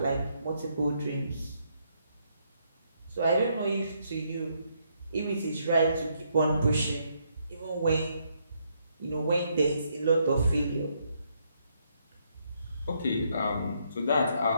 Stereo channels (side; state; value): both; inverted; correlation -0.74